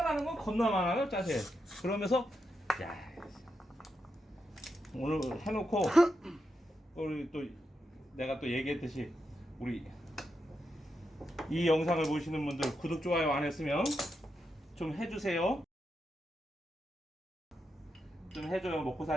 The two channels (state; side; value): normal; both; correlation 0.85